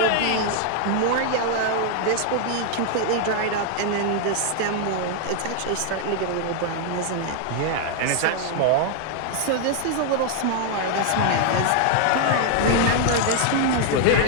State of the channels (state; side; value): different; both; correlation 0.00